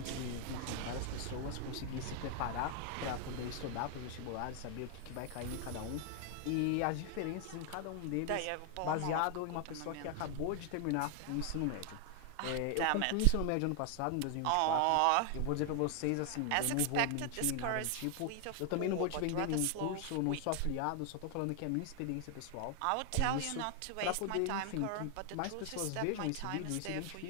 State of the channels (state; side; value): different; both; correlation 0.00